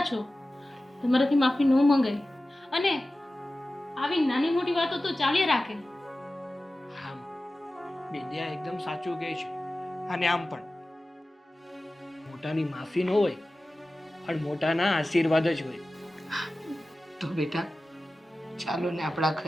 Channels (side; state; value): both; normal; correlation 0.95